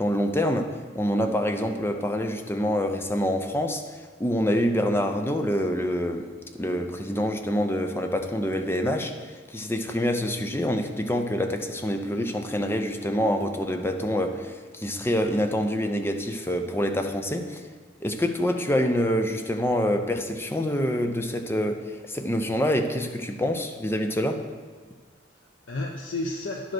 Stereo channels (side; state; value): both; normal; correlation 0.74